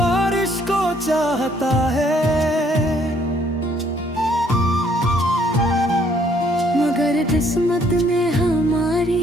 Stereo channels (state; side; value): normal; both; correlation 0.65